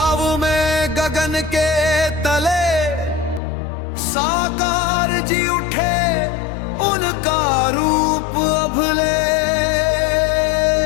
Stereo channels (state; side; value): drops out; right; at 3.4 s